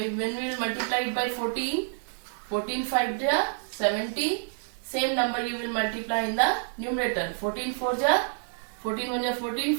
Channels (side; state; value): left; silent; digital silence